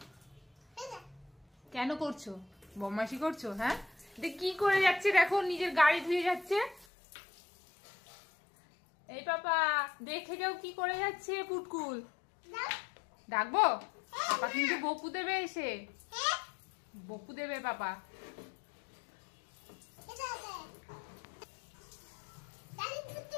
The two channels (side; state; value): right; drops out; at 6.9 s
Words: কেন করছো, বদমাইশি করছো? হ্যাঁ কি করে যাচ্ছে দেখো, নিজের গাড়ি ধুয়ে যাচ্ছে। এই পাপা দেখে যাও কি করে যাচ্ছে পুটকুল। ডাকবো? পাপা কিন্তু বকু দেবে, এসে বকু দেবে পাপা।